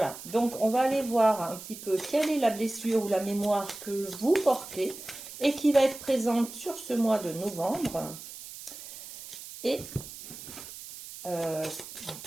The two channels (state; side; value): noise; right; hiss, 13 dB below the sound